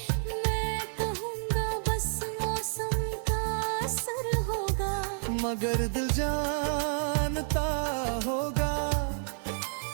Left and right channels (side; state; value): left; silent; digital silence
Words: मैं कहूँगा बस मौसम का असर होगा। मगर दिल जानता होगा